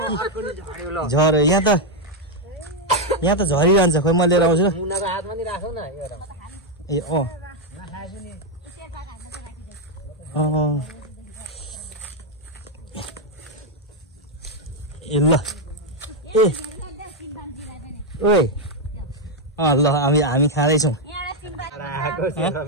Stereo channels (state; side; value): normal; both; correlation 0.02